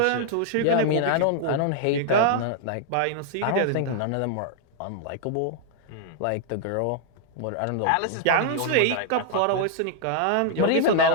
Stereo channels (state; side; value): different; both; correlation -0.01